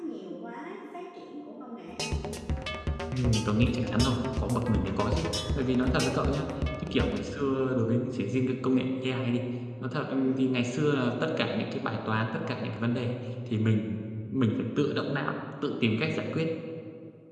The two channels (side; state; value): both; identical; correlation 1.00